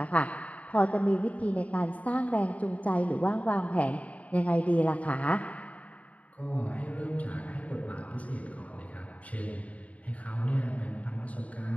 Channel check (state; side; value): late; right; 0.068 ms